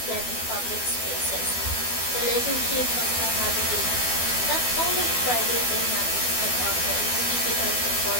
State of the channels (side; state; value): right; late; 12 ms